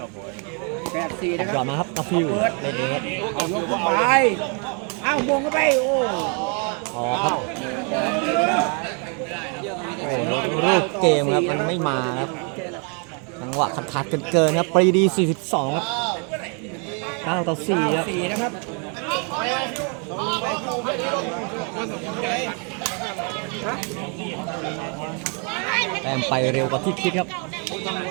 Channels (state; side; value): quieter; left; 37.9 dB